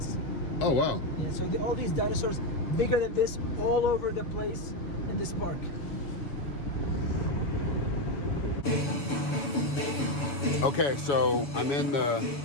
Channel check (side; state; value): right; late; 7.1 ms